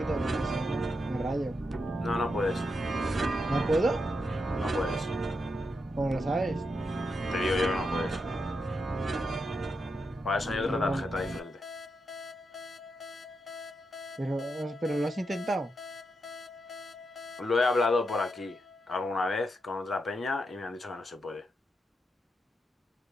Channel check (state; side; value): normal; both; correlation 0.84